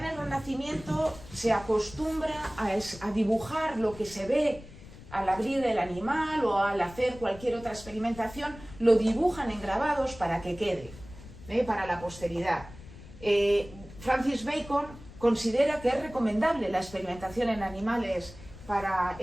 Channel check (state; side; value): noise; left; rumble, 17 dB below the sound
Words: el Renacimiento se acostumbra a dibujar lo que se ve al abrir el animal o al hacer cualquier otra experimentación, lo dibujan en grabados para que quede, para la posteridad. Francis Bacon considera que es recomendable la experimentación en animales para